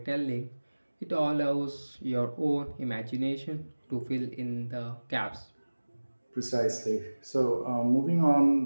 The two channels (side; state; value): both; inverted; correlation -1.00